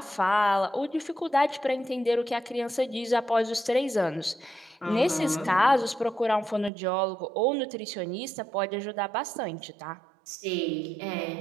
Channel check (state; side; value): drops out; left; at 6.7 s